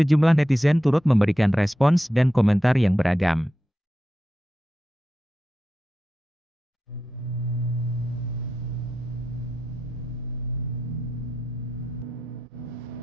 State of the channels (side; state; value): both; normal; correlation 0.89